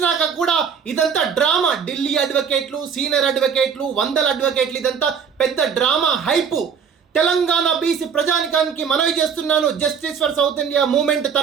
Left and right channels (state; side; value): quieter; left; 6.8 dB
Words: కూడా ఇదంతా డ్రామా. ఢిల్లీ అడ్వకేట్లు, సీనియర్ అడ్వకేట్లు, వందల అడ్వకేట్లు, ఇదంతా పెద్ద డ్రామా హైపు. తెలంగాణ బీసీ ప్రజానికానికి మనవి చేస్తున్నాను, justice for south India movement